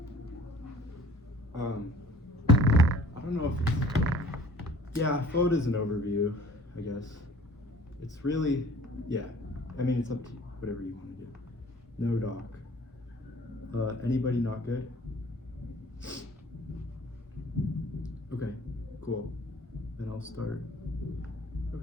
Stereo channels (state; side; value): normal; both; correlation 0.51